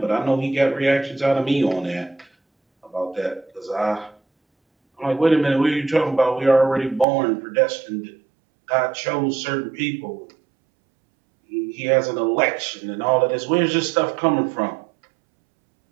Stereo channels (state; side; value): drops out; left; at 7.1 s